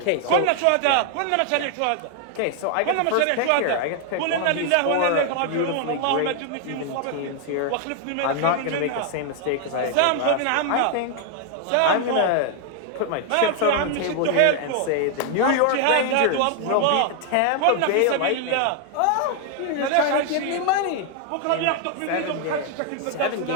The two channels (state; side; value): different; both; correlation 0.00